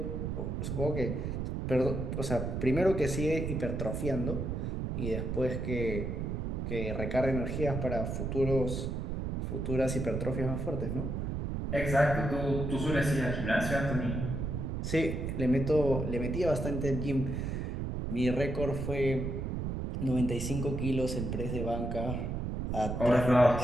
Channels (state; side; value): noise; right; rumble, 2 dB below the sound